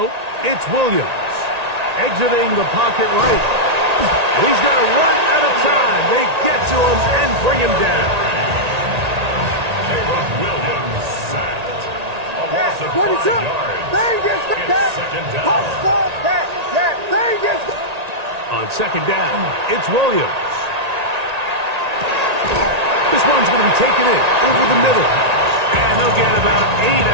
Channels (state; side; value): late; left; 1.8 ms